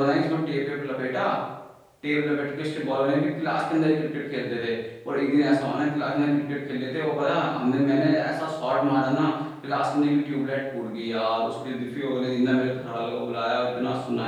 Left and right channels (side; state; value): both; identical; correlation 1.00